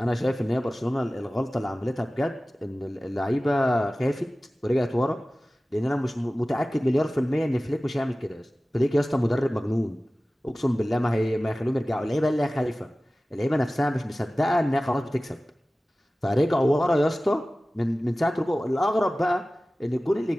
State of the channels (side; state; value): both; normal; correlation 0.97